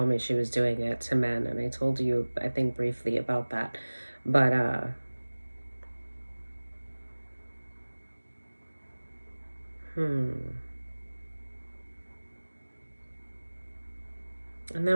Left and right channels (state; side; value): inverted; both; correlation -1.00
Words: me she was doing it to men, and I told you, I think, briefly about that. But and